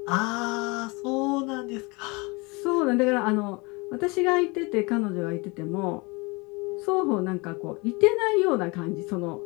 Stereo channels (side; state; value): right; quieter; 27.2 dB